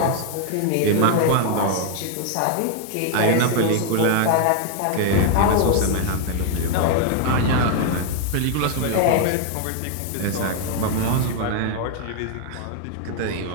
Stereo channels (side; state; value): both; different; correlation 0.00